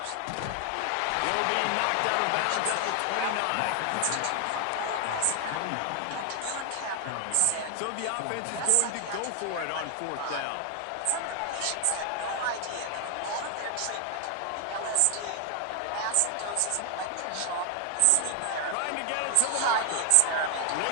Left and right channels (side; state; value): both; different; correlation 0.00